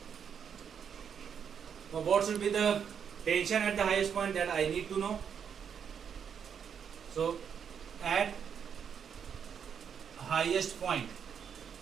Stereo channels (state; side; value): quieter; left; 7.5 dB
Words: Now what should be the tension at the highest point, that I need to know. So at highest point,